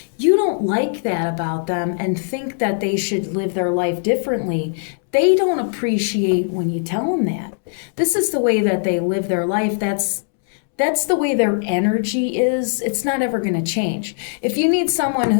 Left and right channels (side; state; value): right; silent; 66 dB below the other